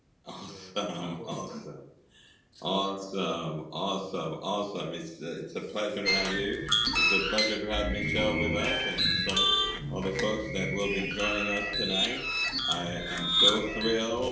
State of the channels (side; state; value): both; identical; correlation 1.00